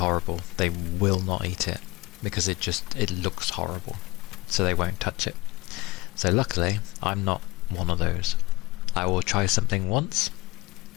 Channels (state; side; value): quieter; right; 21.2 dB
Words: they will not eat it, because it looks horrible, so they won't touch it. So luckily, I'm not one of those. I will try something once,